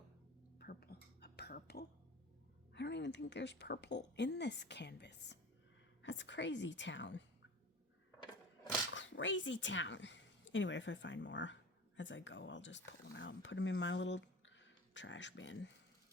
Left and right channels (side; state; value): both; normal; correlation 0.35